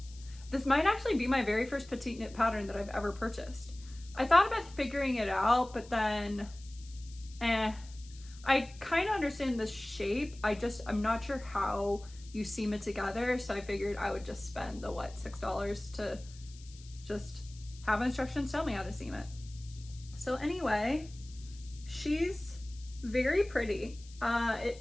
This might actually be my very first Petite Knit pattern that I've ever purchased. I thought about figuring it out, but then, I kind of understand the shape. I'm not sure how you seam it together. So I figured I would just spend the, $6 to just have instructions tell me how to seam it. So anyway, she's very pretty. It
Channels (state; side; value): noise; left; hiss, 21 dB below the sound